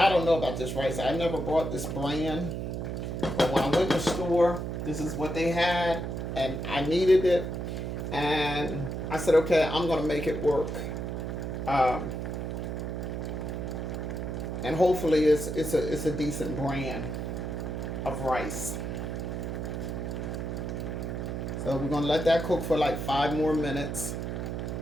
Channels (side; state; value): right; noise; hum, 4 dB below the sound